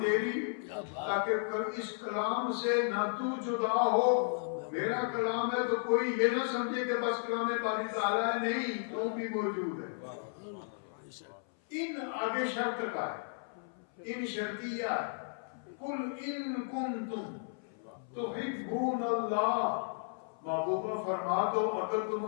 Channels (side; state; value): right; silent; 55 dB below the other